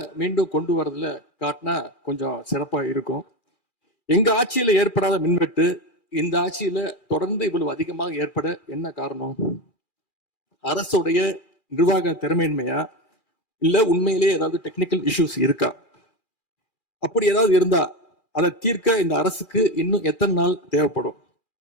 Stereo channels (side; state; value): right; late; 2.4 ms